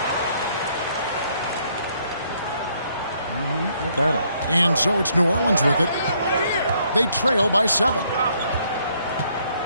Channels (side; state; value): both; inverted; correlation -0.69